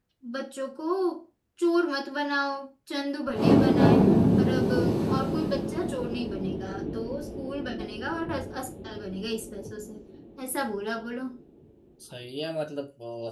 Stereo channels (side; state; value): both; identical; correlation 1.00